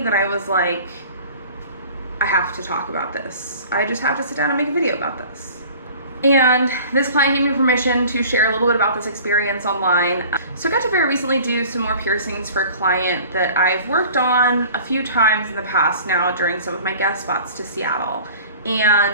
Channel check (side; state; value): both; inverted; correlation -0.45